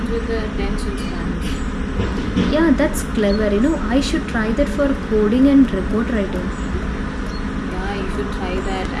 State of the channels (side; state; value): both; identical; correlation 1.00